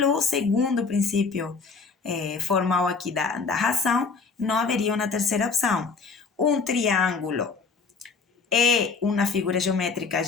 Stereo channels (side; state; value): right; quieter; 4.7 dB